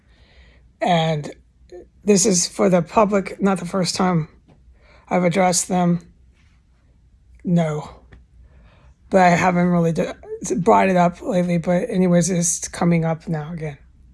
and this is for the public, not the first time I've addressed them. No, but I haven't really brought it up lately. But anyways, it's coming up now again.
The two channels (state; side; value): identical; both; correlation 1.00